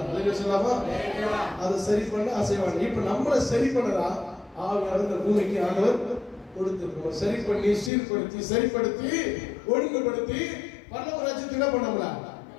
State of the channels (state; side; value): drops out; right; at 7.9 s